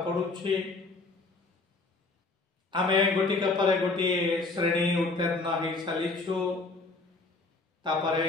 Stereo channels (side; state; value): right; quieter; 3.5 dB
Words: पड़ुछि। आमे गोटिक पर गोटे श्रेणी उत्तीर्ण हो सारिछु। तापरे